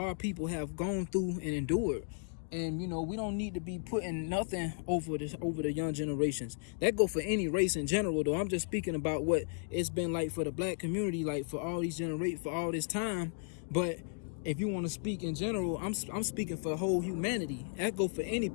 people have gone through and endured, and we don't need to be putting nothing over the young generations. That go for any race in general, though. I'm just speaking about what it's been like for the black community, like for all these for all this time. But if you want to speak in general, I'm speaking for the whole humanity. That go for any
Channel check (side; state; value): right; silent; 55 dB below the other